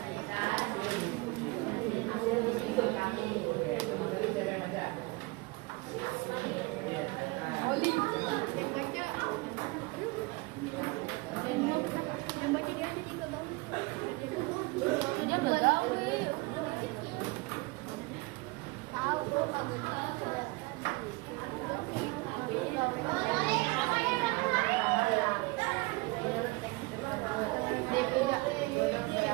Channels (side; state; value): left; quieter; 24.6 dB